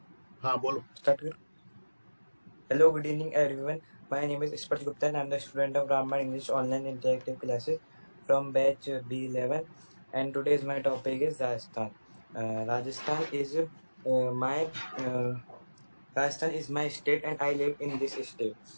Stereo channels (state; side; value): inverted; both; correlation -1.00